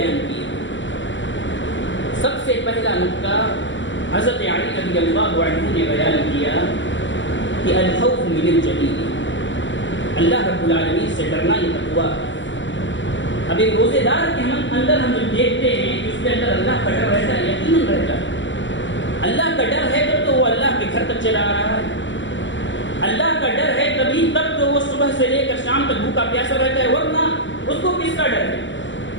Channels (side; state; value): right; late; 0.54 ms